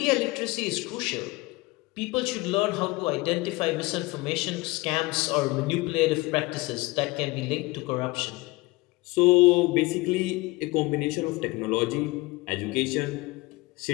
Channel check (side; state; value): right; quieter; 22.3 dB